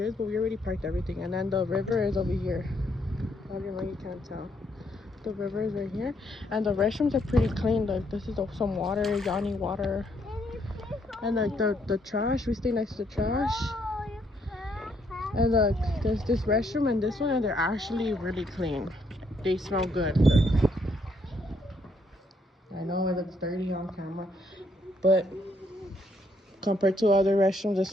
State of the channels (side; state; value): both; normal; correlation 0.72